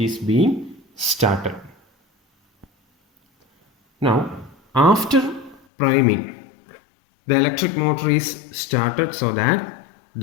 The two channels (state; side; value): drops out; right; at 5.6 s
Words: is being started. Now, after priming, the electric motor is started so that